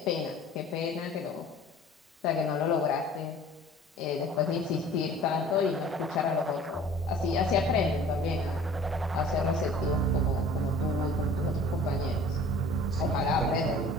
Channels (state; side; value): normal; both; correlation 0.47